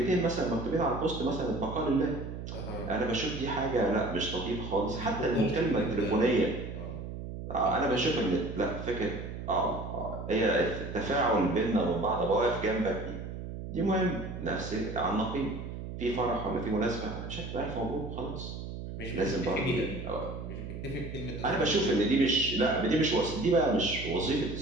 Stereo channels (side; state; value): right; noise; hum, 8 dB below the sound